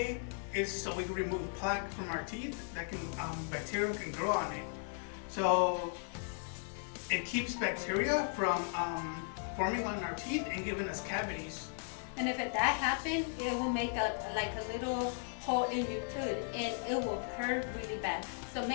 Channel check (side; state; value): right; silent; 53 dB below the other